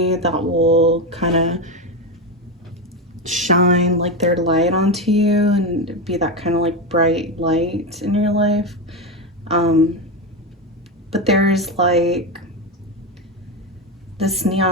that will kind of shine like their light onto you and be that kind of like bright light in your life. But there's like this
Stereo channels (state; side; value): normal; both; correlation 0.14